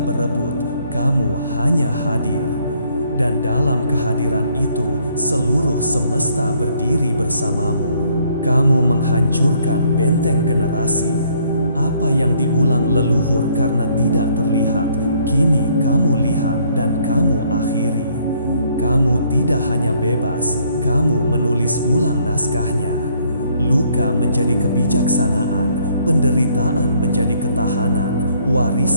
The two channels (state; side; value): inverted; both; correlation -0.65